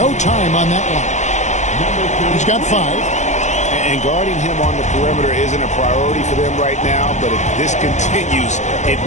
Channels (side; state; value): right; late; 0.34 ms